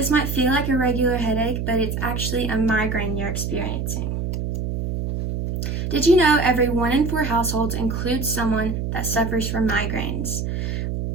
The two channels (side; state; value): right; noise; hum, 2 dB below the sound